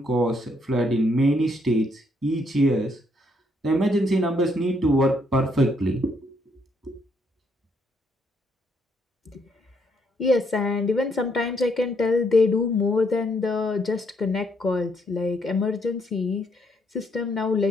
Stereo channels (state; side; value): normal; both; correlation 0.72